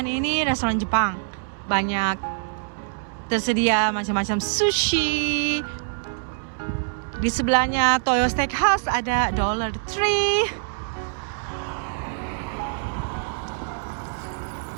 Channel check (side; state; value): left; silent; 62 dB below the other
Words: ini restoran Jepang, banyak tersedia macam-macam sushi. Di sebelahnya Toyo Steakhouse ada Dollar Tree.